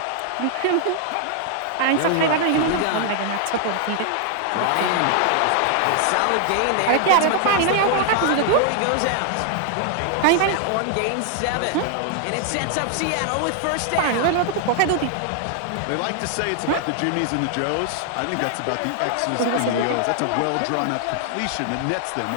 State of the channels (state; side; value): different; both; correlation 0.00